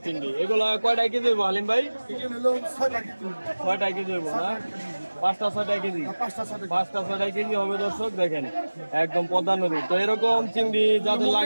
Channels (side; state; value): both; inverted; correlation -1.00